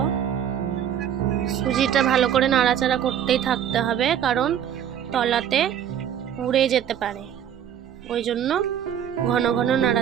সুজিটা ভালো করে নাড়াচাড়া করতেই থাকতে হবে, কারণ তলাতে পুড়ে যেতে পারে, ওই জন্য ঘন ঘন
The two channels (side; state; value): left; quieter; 9.5 dB